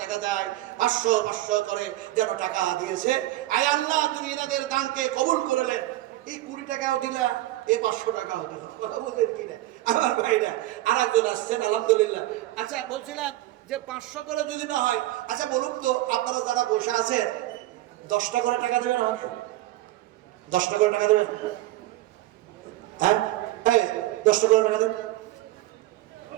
দেখা যায় 500 করে যেন টাকা দিয়েছে। আয় আল্লাহ, তুমি এনাদের দানকে কবুল করলেন। এই 20 টাকাও দিলা, এই 500 টাকাও দিলা, কথা বললেন কিনা আমার ভাইরা? আর একজন আসছেন আলহামদুলিল্লাহ। আচ্ছা বলছিলাম যে 500 করে যদি না হয়, আচ্ছা বলুন তো আপনারা যারা বসে আছেন 10টা করে টাকা দেবেন আমাকে? 10টা করে টাকা দেবেন? হ্যাঁ, এই 10টা করে টাকা দেন,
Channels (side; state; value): left; quieter; 16.3 dB